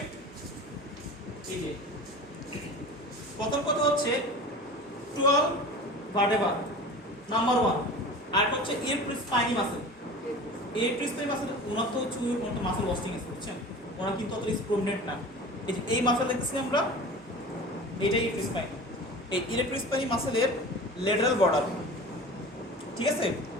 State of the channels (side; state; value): both; normal; correlation 0.37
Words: এই যে প্রথম কথা হচ্ছে 12 ভার্টেব্রা নাম্বার 1, আর হচ্ছে স্পাইনি মাসল। স্পাইনি মাসল ওনার তো হচ্ছে কোনো মাসল ওয়াস্টিং আছে, বুঝছেন? ওনার কিন্তু অত প্রমিনেন্ট না। এই যে এই মাসল দেখতেছি আমরা, এটাই স্পাইনি। এই স্পাইনি মাসলের লেটারাল বর্ডার, ঠিক আছে?